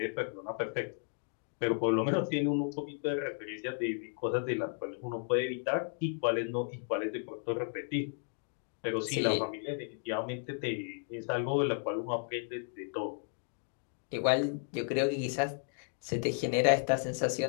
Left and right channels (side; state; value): right; silent; 55 dB below the other